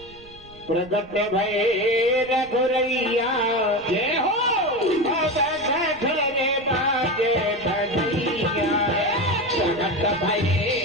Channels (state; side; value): noise; right; rumble, 23 dB below the sound